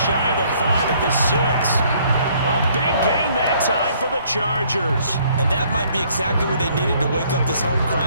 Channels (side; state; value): both; inverted; correlation -0.63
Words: shy of the 5 at the 6. A big gain that time for the Chargers. And that might be exactly what they needed to wake up this home